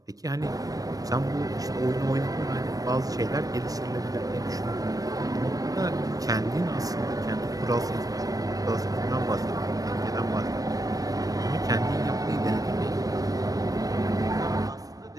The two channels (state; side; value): late; left; 0.18 ms